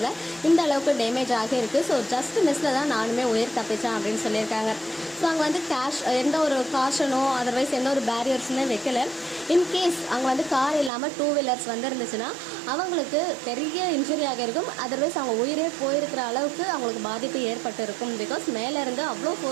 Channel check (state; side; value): drops out; left; at 10.9 s